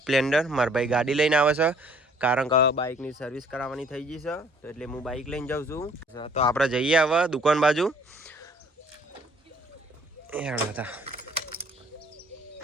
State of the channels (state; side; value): normal; both; correlation 0.58